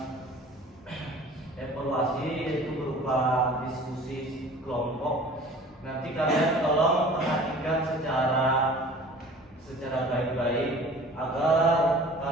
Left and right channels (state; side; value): normal; both; correlation 0.45